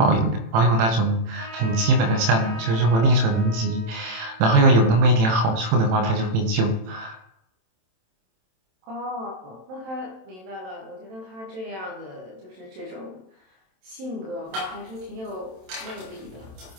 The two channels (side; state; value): left; late; 27 ms